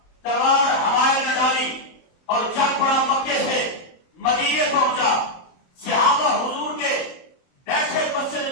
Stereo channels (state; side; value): late; right; 23 ms